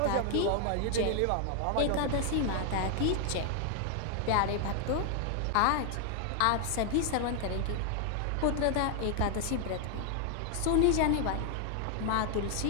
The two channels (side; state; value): both; different; correlation 0.00